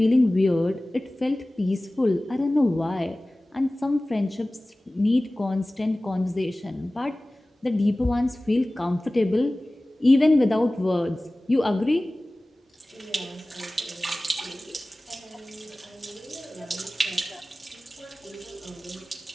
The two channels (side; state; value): both; normal; correlation 0.98